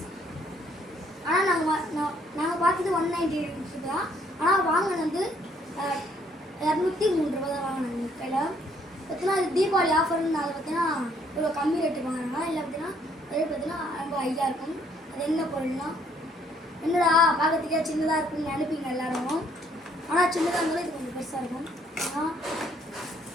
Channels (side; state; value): both; normal; correlation 0.66